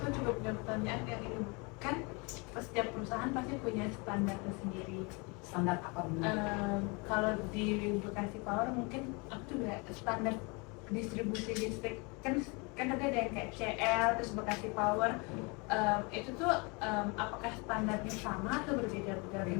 juga punya pertanyaan yang ini kan setiap perusahaan pasti punya standar tersendiri. Standar apa dulu? Kalau di Bekasi Power mungkin aku juga standar distribusi listrik kan ada yang kayak CL terus Bekasi Power itu tuh apakah standarnya sama atau berbeda dari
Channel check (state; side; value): quieter; right; 29.8 dB